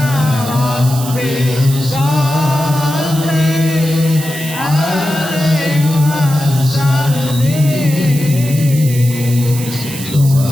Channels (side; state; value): right; noise; hiss, 11 dB below the sound